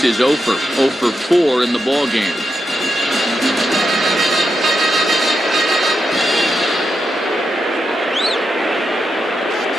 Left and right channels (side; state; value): both; normal; correlation 0.85